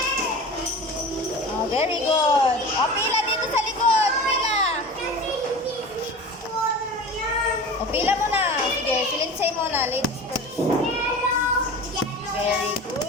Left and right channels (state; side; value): normal; both; correlation 0.34